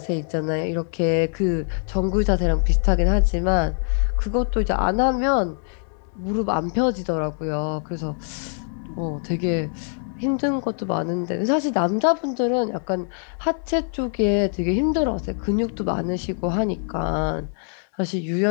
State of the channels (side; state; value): right; silent; 55 dB below the other